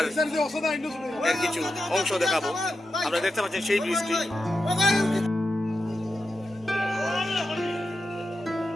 এর কিছু অংশ দেখাবো। আপনারা দেখতে পাচ্ছেন সেই ব্রিজটি।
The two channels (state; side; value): normal; both; correlation 0.89